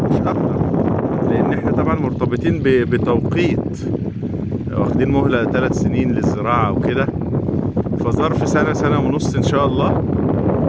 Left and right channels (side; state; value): both; identical; correlation 1.00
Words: مش أكتر، لأن إحنا طبعا مرتبطين بتوقيت، واخدين مهلة 3 سنين للزراعة وكده، فظرف سنة سنة ونص إن شاء الله.